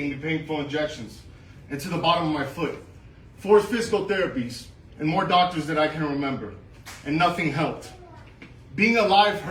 painful injections into the bottom of my foot, 4 physical therapies, and more doctors than I can remember, and nothing helped. Being alive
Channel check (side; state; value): both; identical; correlation 1.00